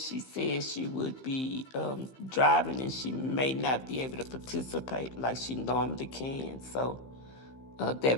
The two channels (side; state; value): right; late; 15 ms